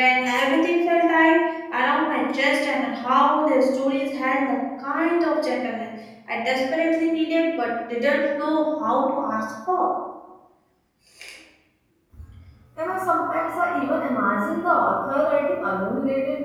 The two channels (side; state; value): both; identical; correlation 1.00